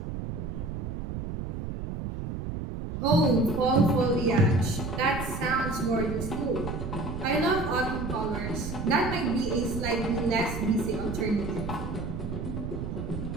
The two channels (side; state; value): right; noise; rumble, 5 dB below the sound